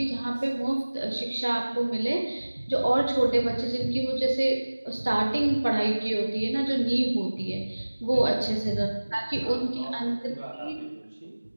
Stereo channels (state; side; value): inverted; both; correlation -1.00